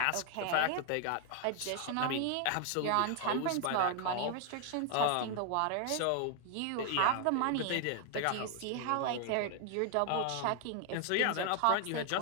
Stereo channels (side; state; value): both; different; correlation 0.00